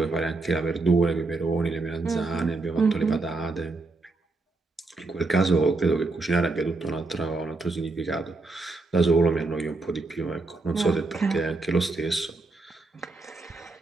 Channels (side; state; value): left; quieter; 3.5 dB